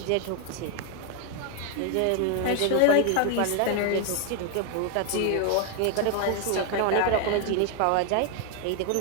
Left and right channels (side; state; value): both; different; correlation 0.00